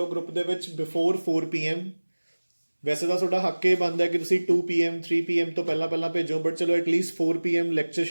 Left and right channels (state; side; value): inverted; both; correlation -1.00